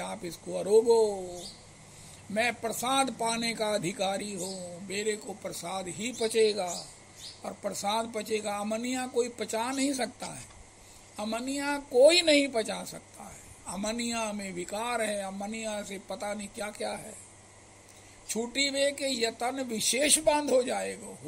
इसको अरोगो, मैं प्रसाद पाने का अधिकारी हूँ, मेरे को प्रसाद ही पचेगा और प्रसाद पचेगा। अमनिया कोई पचा नहीं सकता है, अमनिया कोई नहीं पचा सकता है। अमनिया में विकार है, अमनिया से पता नहीं क्या क्या है। छूटी वे के यतन विशेष बांध हो जाएगा,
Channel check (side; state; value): both; identical; correlation 1.00